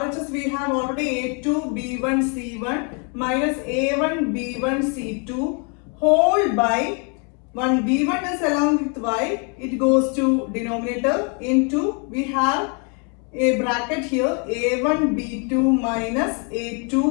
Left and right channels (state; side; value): quieter; right; 37.0 dB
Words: we have already a2 b1 c1 minus a1 b1 c2 whole by 1 b1 is along with y, it goes to denominator into, we have a bracket here, a1 b2 minus a2